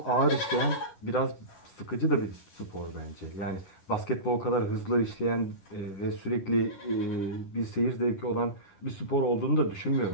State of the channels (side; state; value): right; late; 10 ms